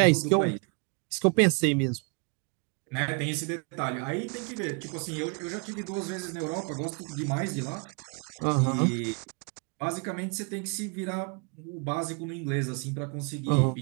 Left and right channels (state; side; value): quieter; left; 35.8 dB